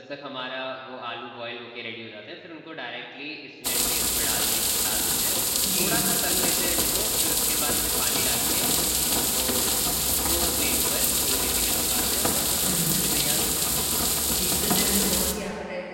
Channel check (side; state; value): both; identical; correlation 1.00